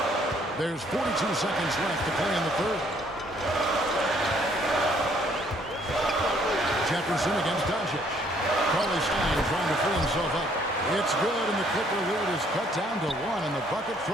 There's 42 seconds left to play in the third. Jefferson against Doncic. Cauley-Stein trying to free himself up. It's good, and the Clipper lead is cut down to 1 in the bucket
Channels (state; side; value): normal; both; correlation 0.64